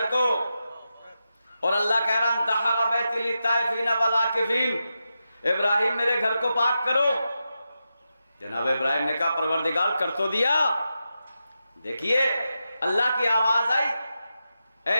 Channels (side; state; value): both; inverted; correlation -0.89